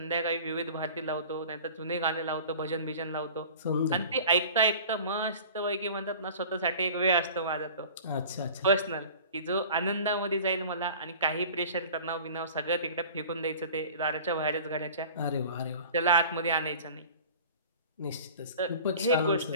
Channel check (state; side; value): inverted; both; correlation -0.42